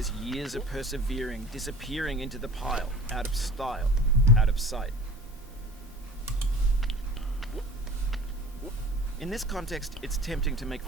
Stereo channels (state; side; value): normal; both; correlation 0.41